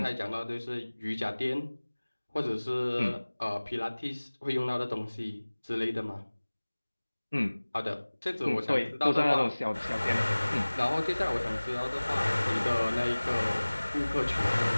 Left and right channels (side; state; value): both; inverted; correlation -1.00